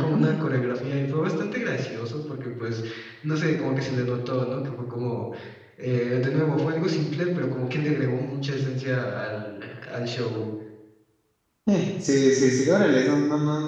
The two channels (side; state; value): both; identical; correlation 1.00